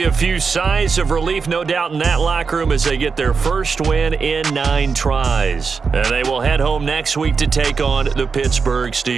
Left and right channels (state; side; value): quieter; left; 5.2 dB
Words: a few sighs of relief, no doubt, in that locker room as they get their first win in 9 tries. And they will head home next week to take on the Pittsburgh